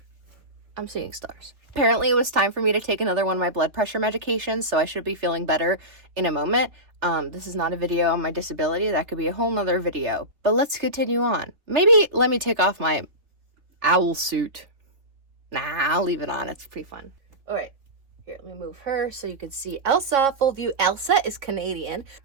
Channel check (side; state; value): left; late; 3.3 ms